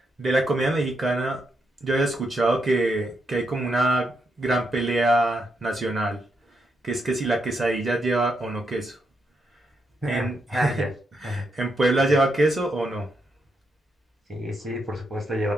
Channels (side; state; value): both; normal; correlation 0.81